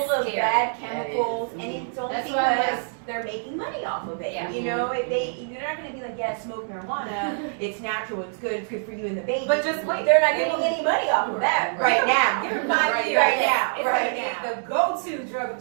of scary. bad That chemicals, is. and it's only That's why, because like- they're making money off of it. Yeah. If you're not going to be like, yeah, smoke marijuana, it's natural, it's good for you and the baby. But just wait. They're not getting any money off of that right now. Give it Right 5 years. right now, It's right like now. the go-to drug of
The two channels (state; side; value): silent; left; digital silence